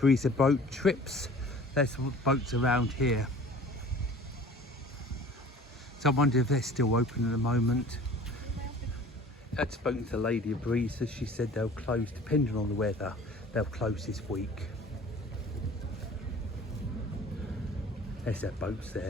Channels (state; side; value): normal; both; correlation 0.47